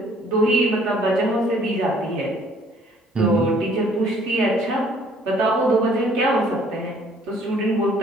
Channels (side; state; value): both; normal; correlation 0.59